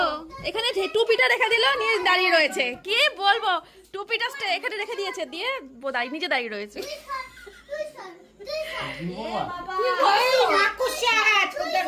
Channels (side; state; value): both; identical; correlation 1.00